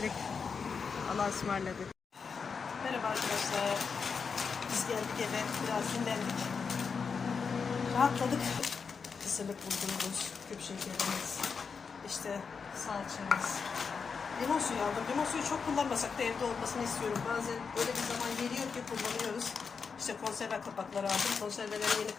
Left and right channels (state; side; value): quieter; right; 5.6 dB